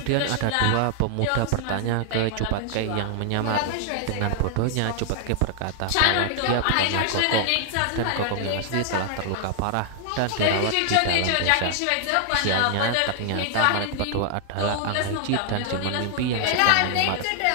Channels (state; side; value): different; both; correlation 0.00